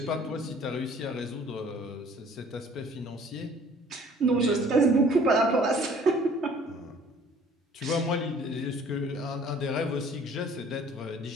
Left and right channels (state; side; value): normal; both; correlation 0.53